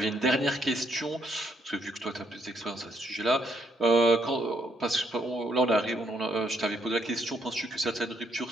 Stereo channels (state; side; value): normal; both; correlation 0.73